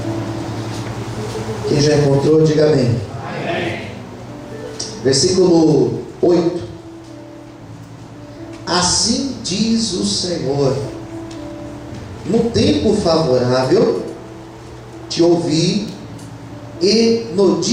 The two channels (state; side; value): identical; both; correlation 1.00